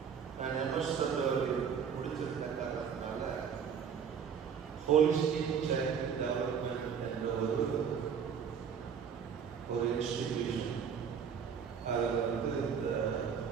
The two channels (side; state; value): left; quieter; 7.2 dB